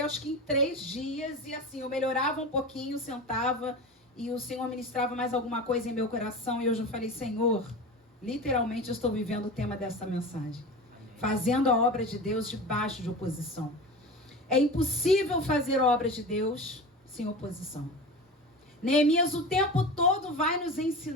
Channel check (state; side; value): normal; both; correlation 0.30